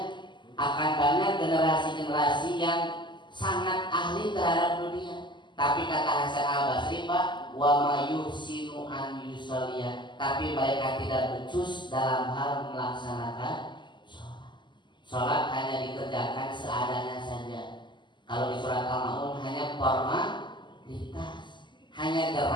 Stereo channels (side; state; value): right; late; 0.22 ms